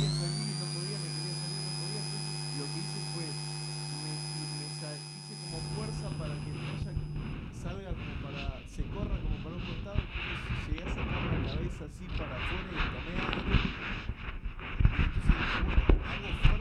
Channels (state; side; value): identical; both; correlation 1.00